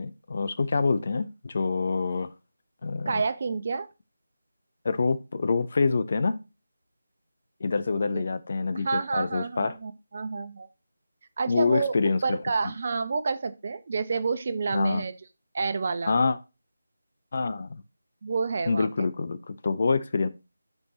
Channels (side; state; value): both; inverted; correlation -0.89